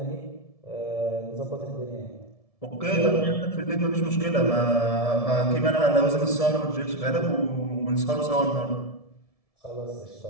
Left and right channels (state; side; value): late; right; 1.7 ms